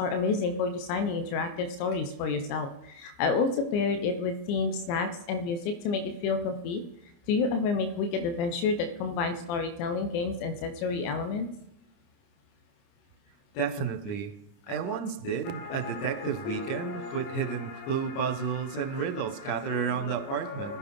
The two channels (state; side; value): late; right; 29 ms